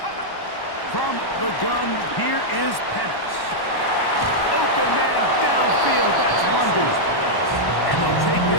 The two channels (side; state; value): right; late; 1.1 ms